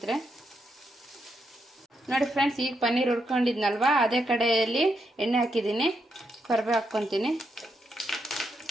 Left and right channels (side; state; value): both; normal; correlation 0.81